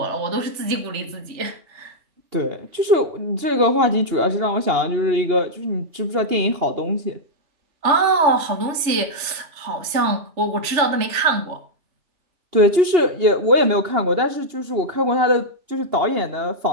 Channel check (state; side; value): late; left; 3.3 ms